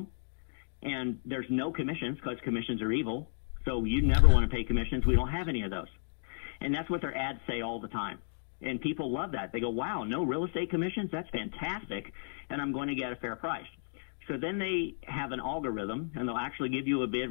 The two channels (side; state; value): right; silent; digital silence